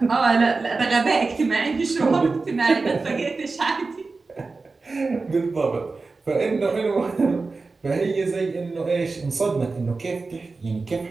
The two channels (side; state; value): left; quieter; 3.9 dB